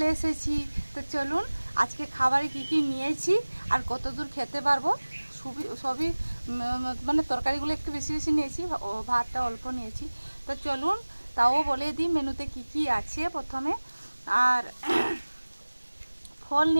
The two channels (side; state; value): both; inverted; correlation -1.00